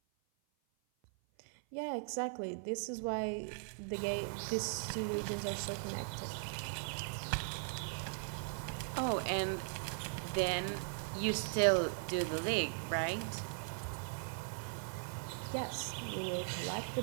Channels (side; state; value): left; silent; 52 dB below the other